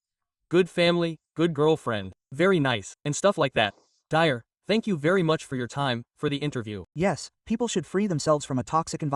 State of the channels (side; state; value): both; identical; correlation 1.00